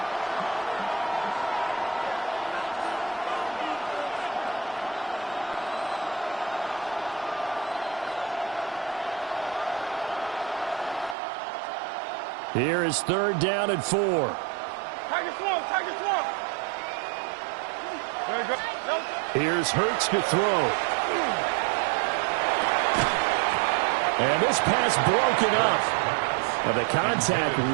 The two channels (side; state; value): left; drops out; at 11.2 s